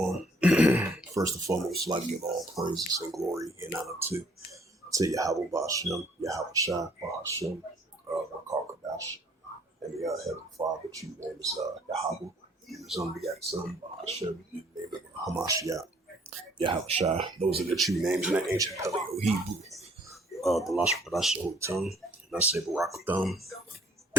First and foremost, I'd like to give all praises and glory and honor to Yahweh Bashem, Yahweh Shai, Bahashem, Rakar Kadash, and the Heavenly Father, which you name is Yahweh, his unbegotten Son, Bahashem, you name it Hamashiach, Yahweh Shai. Those are the true names in the ancient Paleo Hebrew, the Lashon Kadash, the Holy Tongue, and I say Barakatham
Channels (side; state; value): both; normal; correlation 0.61